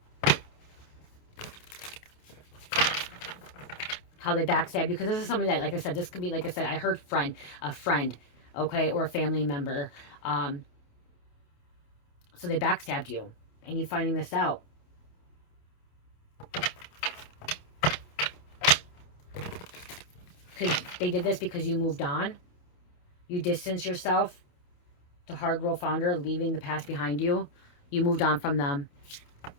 how they backstab you, because this is something that, like I said, this could be, like I said, I heard a friend, okay, or a family member, so they backstabbed you and you finding this out. Because they did this because you moved on, you distanced yourself. The hard role founder, leaving the past behind you. You moved on from them.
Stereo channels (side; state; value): right; late; 28 ms